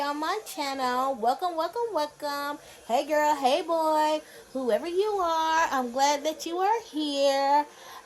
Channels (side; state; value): both; identical; correlation 1.00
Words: on my channel. Welcome, welcome, welcome. Hey girl, hey boy, whoever you are, I'm glad that you are here.